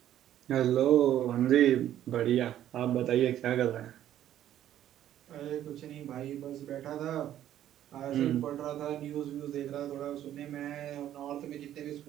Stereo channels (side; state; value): left; quieter; 11.8 dB